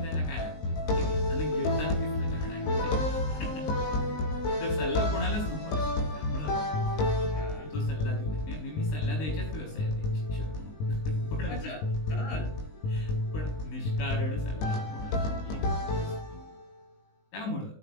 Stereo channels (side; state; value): right; late; 19 ms